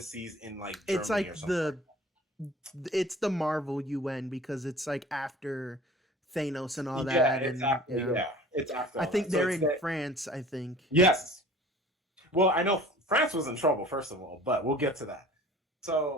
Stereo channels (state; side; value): normal; both; correlation 0.45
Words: in like It's Germany like or something like it's the Marvel UN because it's like after Thanos and all that. Yeah, that, it's and after. Yeah, it's after I all that. think So they're it's in that. France. I think. Yes. Well, I know France was in trouble first of all, but we'll get to that.